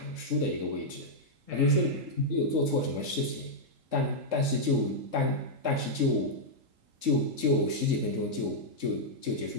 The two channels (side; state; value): left; late; 3.8 ms